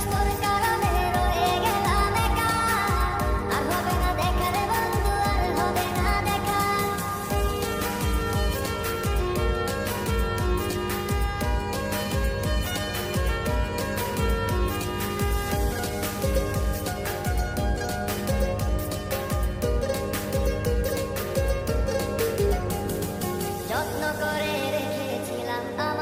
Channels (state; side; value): identical; both; correlation 1.00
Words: তোর কারণে রয়ে গেলাম একা, আর হবে না দেখা রে বন্ধু, আর হবে না দেখা। যত্ন করে রেখেছিলাম